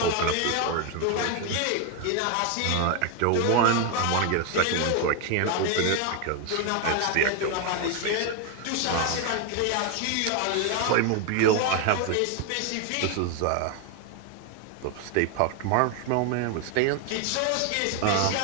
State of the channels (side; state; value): both; different; correlation 0.01